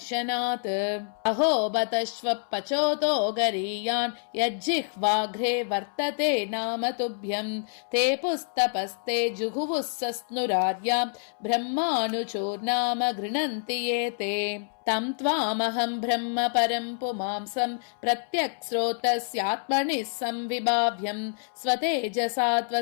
अहो बतश्व पचोतो गरीयान् यज्जिह्वाघ्रे वर्तते नाम तुभ्यं ते पुस्तपस्ते जुहुवुः सस्नुराद्यां ब्रह्मानुचोर्नाम गृह्णन्ति ये ते तं त्वामहं ब्रह्म परं पुमांसं प्रत्यक्स्रोतस्यात्मनिः संविभाव्यं स्वतेजसा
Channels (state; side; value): silent; right; 60 dB below the other